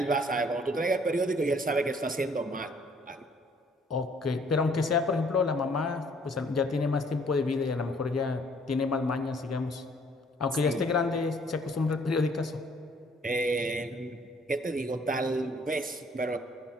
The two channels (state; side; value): normal; both; correlation 0.61